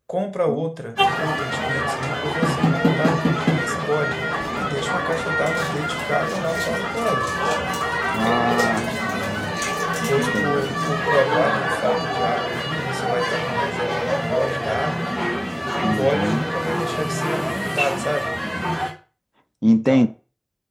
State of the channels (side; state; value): both; identical; correlation 1.00